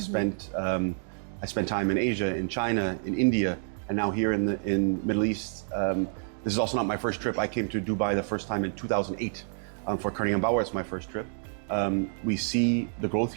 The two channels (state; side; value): silent; left; digital silence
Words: time in Asia, in China, in India, and now here in Middle East. This is also not my first trip. I came to Dubai the first time in 2008 for Koenig Bauer. It's my first trip. We see the growth